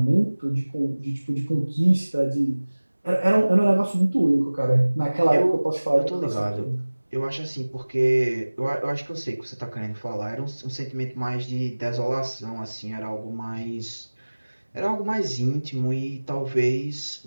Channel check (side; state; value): both; inverted; correlation -1.00